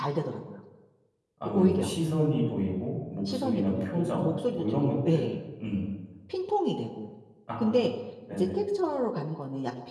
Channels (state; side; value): identical; both; correlation 1.00